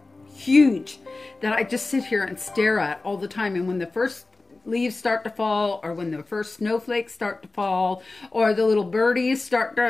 huge that I just sit here and stare at all the time. And when the first leaves start to fall, or when the first snowflakes start to fall, or the little birdies start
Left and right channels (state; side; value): quieter; right; 3.3 dB